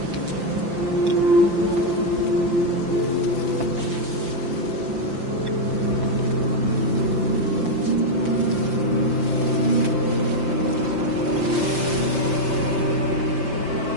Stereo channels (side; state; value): left; late; 5.8 ms